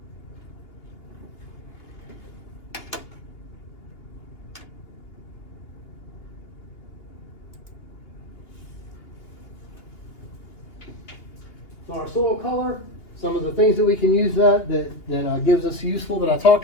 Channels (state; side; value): late; right; 2.8 ms